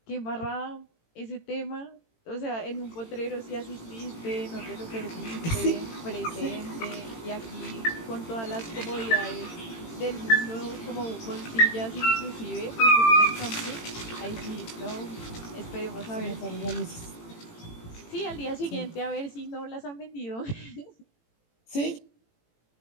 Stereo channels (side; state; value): right; late; 18 ms